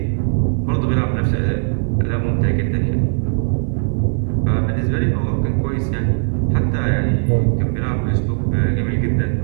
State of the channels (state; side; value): silent; left; digital silence